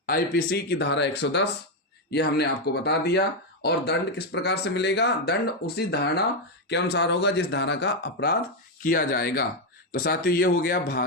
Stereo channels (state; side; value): normal; both; correlation 0.05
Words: आईपीसी की धारा 110 ये हमने आपको बता दिया। और दंड किस प्रकार से मिलेगा, दंड उसी धारणा के अनुसार होगा जिस धारा का अपराध किया जाएगा। तो साथियों ये हो गया